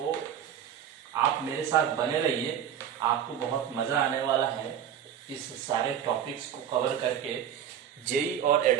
आप मेरे साथ बने रहिए, आपको बहुत मज़ा आने वाला है इस सारे टॉपिक्स को कवर करके। जेई और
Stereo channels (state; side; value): quieter; left; 9.4 dB